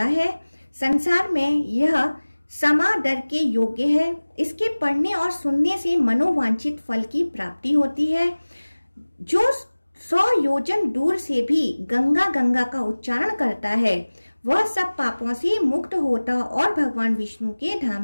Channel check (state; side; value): inverted; both; correlation -1.00